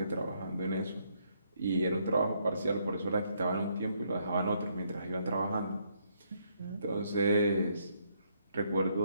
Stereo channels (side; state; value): both; inverted; correlation -0.73